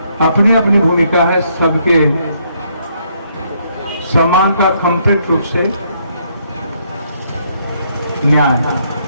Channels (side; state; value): both; inverted; correlation -0.71